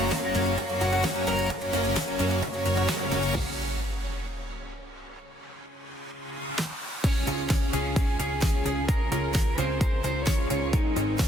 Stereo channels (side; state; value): both; normal; correlation 0.70